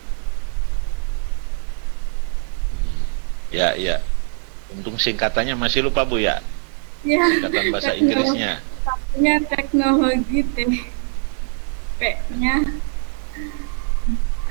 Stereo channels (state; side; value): silent; left; 60 dB below the other